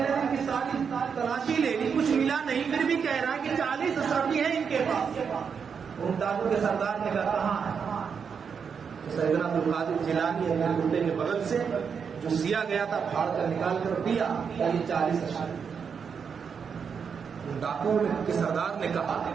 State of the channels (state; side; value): quieter; left; 6.5 dB